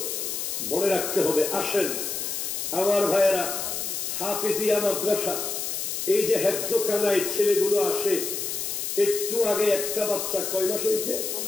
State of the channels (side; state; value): left; noise; hiss, 3 dB below the sound